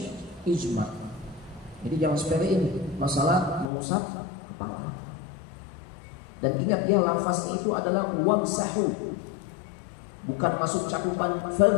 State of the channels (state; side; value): drops out; right; at 3.7 s